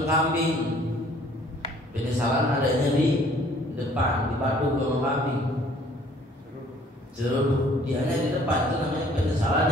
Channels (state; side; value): normal; both; correlation 0.57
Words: kambing. Penyesalan adanya di depan, dipadu sama kambing. Jeruk dianya di depan, itu namanya penyesalan